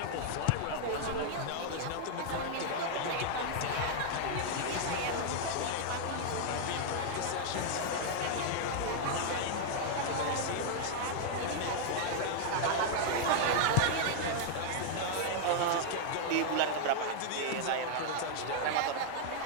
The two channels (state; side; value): different; both; correlation -0.01